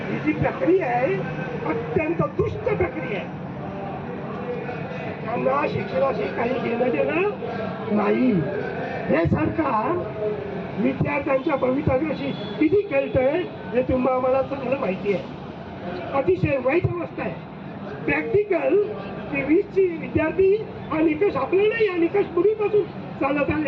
ही जी प्रक्रिया आहे अत्यंत दुष्ट प्रक्रिया आहे. त्यांना शिक्षणाशी काही घेणं देणं नाही. हे सरकार विद्यार्थ्यांच्या भवितव्याशी किती खेळतंय हे तुम्हाला मला चांगलं माहिती आहे. अतिशय वाईट अवस्था आहे. प्रॅक्टिकल 20ची विद्यार्थी हा निकष आपल्याला, हा निकष पूर्वीपासून चालत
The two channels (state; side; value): identical; both; correlation 1.00